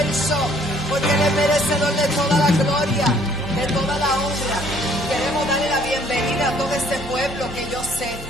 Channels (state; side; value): normal; both; correlation 0.61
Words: porque Él es merecedor de toda la gloria, de toda la honra. Queremos darle la bienvenida a todo este pueblo que yo sé